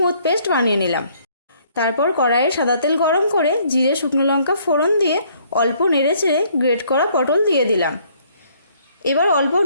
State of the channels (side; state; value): both; inverted; correlation -0.64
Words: পেস্ট বানিয়ে নিলাম। তারপর কড়াইয়ে সাদা তেল গরম করে জিরে শুকনো লঙ্কা ফোড়ন দিয়ে অল্প নেড়ে চেড়ে গ্রেট করা পটল দিয়ে দিলাম। এবার অল্প